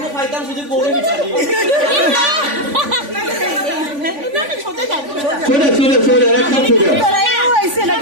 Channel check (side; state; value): left; late; 3.5 ms